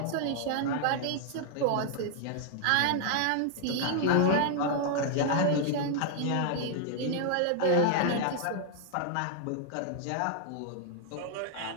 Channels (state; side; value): different; both; correlation 0.00